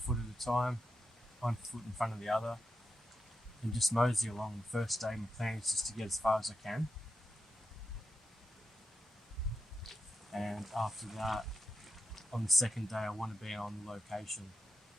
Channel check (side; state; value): both; normal; correlation 0.85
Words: at a time, 1 foot in front of the other, and just mosey along. The first day, my plan is just to get as far as I can, and after that, on the second day, I want to be on location